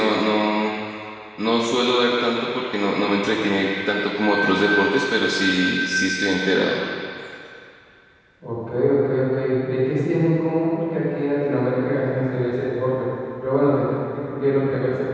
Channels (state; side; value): identical; both; correlation 1.00